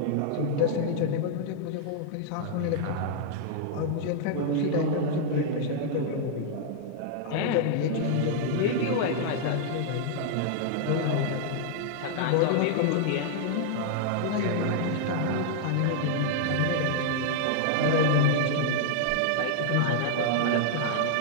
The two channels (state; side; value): different; both; correlation -0.01